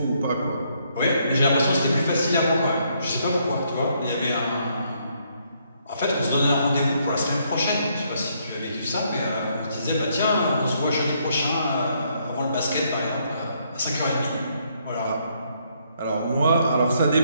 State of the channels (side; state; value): both; inverted; correlation -0.72